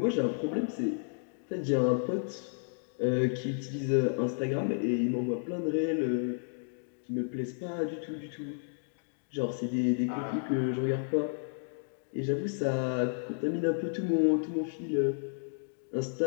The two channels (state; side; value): silent; right; digital silence